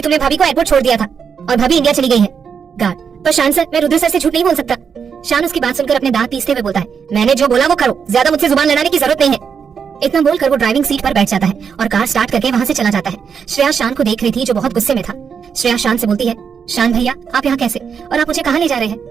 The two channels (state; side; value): quieter; left; 6.7 dB